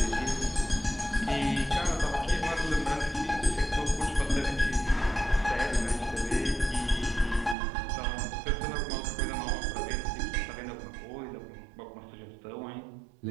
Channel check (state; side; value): drops out; left; at 7.6 s